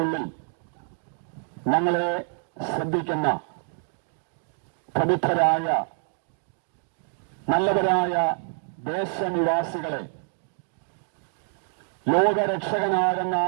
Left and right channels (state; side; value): silent; left; 60 dB below the other